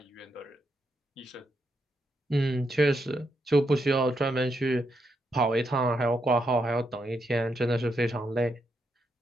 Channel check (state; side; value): normal; both; correlation 0.81